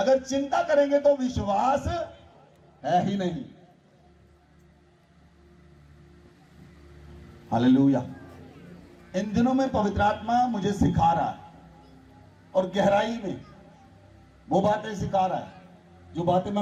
चिंता करेंगे तो विश्वास है ही नहीं। हालेलुया। इन दिनों में पवित्र आत्मा मुझे सिखा रहा है, और गहराई में वो बातें सिखा रहा है जो बातें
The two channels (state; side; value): identical; both; correlation 1.00